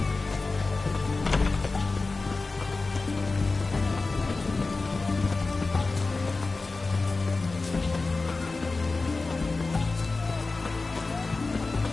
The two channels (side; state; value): right; quieter; 3.7 dB